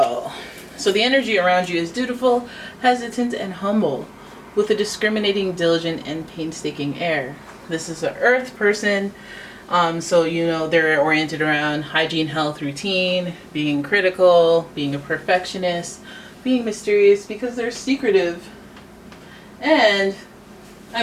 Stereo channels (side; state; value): both; identical; correlation 1.00